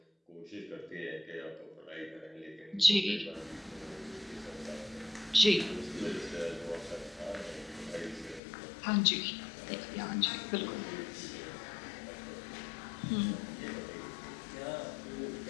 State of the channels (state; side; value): drops out; right; at 8.4 s